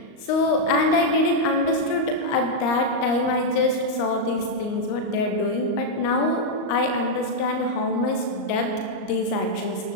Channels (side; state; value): right; late; 38 ms